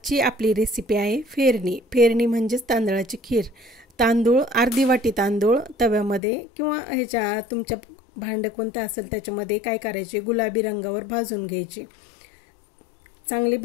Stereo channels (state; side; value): drops out; right; at 6.2 s